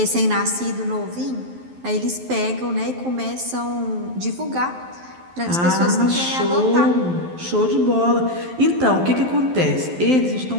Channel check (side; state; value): left; late; 12 ms